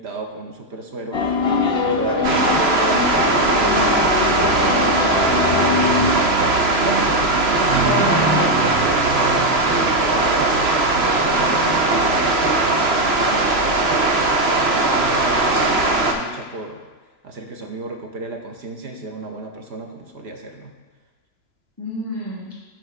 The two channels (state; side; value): late; left; 3.0 ms